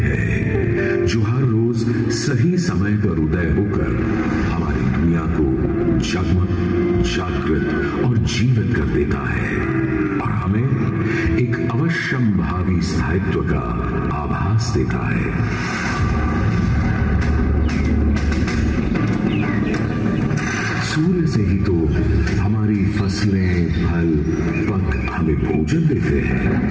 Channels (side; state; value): both; identical; correlation 1.00